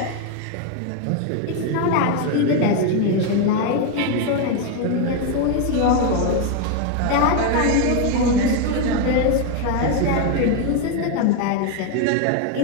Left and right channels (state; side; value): different; both; correlation 0.01